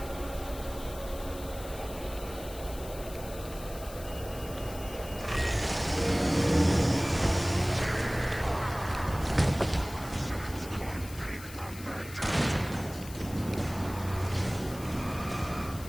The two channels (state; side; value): noise; left; hiss, 15 dB below the sound